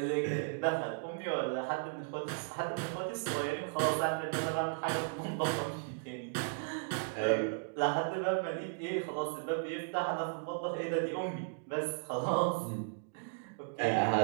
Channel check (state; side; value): silent; left; digital silence